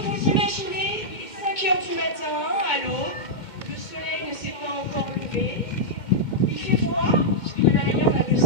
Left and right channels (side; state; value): right; late; 2.2 ms